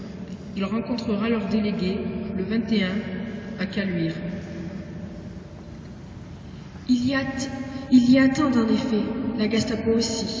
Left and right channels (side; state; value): both; identical; correlation 1.00